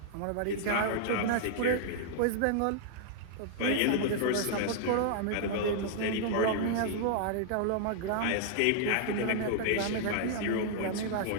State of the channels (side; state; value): both; different; correlation -0.01